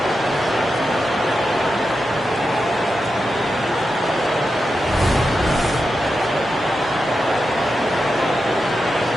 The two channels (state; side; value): normal; both; correlation 0.89